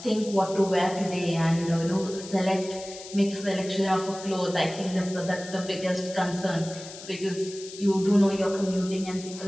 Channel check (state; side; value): noise; left; hiss, 14 dB below the sound